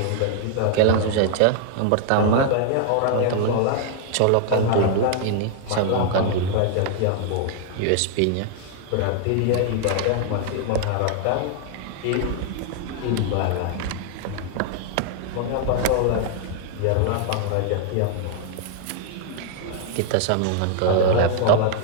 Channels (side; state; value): both; different; correlation 0.00